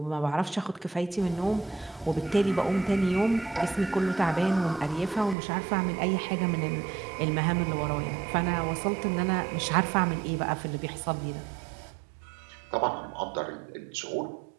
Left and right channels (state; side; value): drops out; left; at 5.4 s